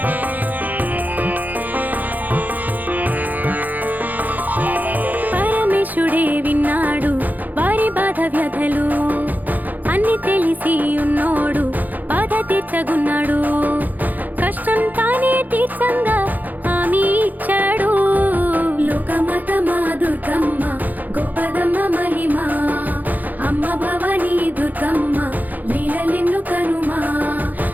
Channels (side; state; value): left; late; 0.083 ms